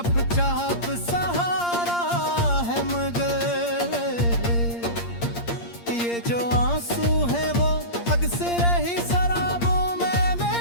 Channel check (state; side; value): late; right; 8.6 ms